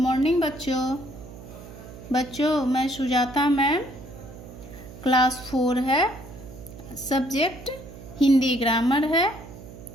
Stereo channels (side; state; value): right; noise; hum, 16 dB below the sound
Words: बच्चों मैं Sujata ma'am. Class 4 है, सब्जेक्ट हिंदी ग्रामर है,